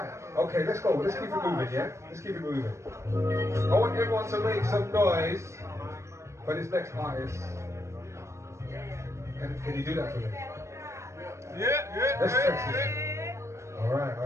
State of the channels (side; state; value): left; late; 0.14 ms